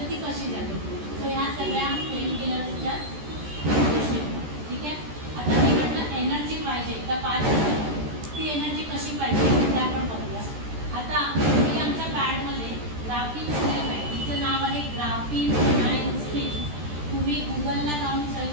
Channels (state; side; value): late; left; 13 ms